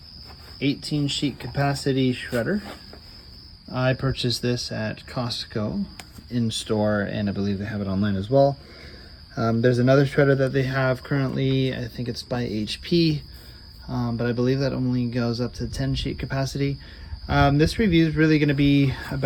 18 sheet capacity shredder. I purchased this at Costco in store, and I believe they have it online as well. There's another shredder that they have currently. I think it's by HP, but I believe that only goes up to 10 sheet capacity. This review is really going to be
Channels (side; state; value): both; identical; correlation 1.00